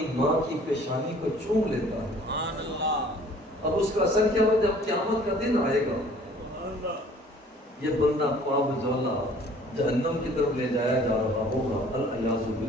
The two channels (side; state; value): both; normal; correlation 0.53